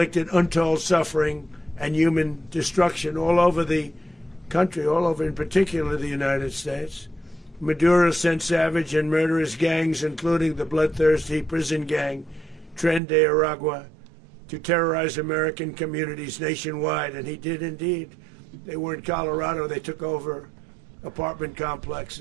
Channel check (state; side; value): drops out; left; at 13.0 s